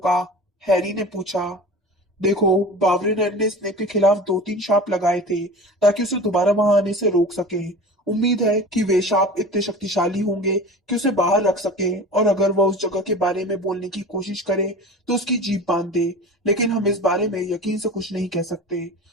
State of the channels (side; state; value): both; normal; correlation 0.36